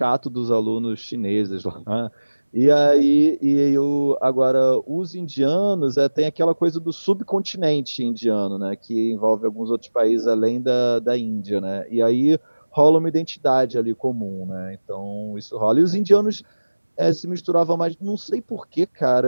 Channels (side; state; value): both; inverted; correlation -1.00